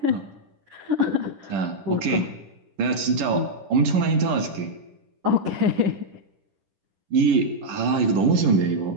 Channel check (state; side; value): late; left; 10 ms